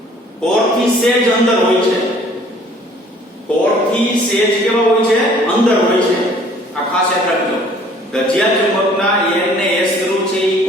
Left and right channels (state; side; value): normal; both; correlation 0.55